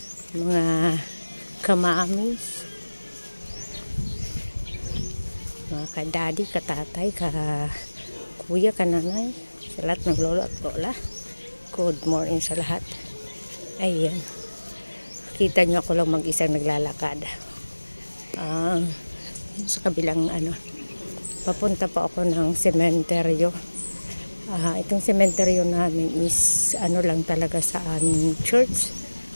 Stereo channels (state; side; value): inverted; both; correlation -1.00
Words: Mga kamamis, mga kadadi, katatay, kuya, kananay, sa lahat ng lolo at lola. Good morning sa lahat. Ayan. Kita nyo ako lang mag-isang naglalakad. Sa kabilang papunta pa ako ng sementeryo. Itong sementeryo namin is lang talaga sa aming church.